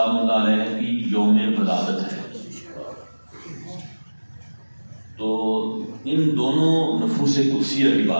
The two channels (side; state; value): both; inverted; correlation -1.00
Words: اللہ علیہ کی یوم ولادت ہے. تو ان دونوں نفوس قدسیہ کی